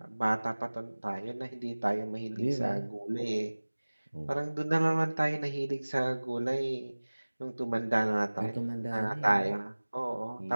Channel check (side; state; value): both; inverted; correlation -1.00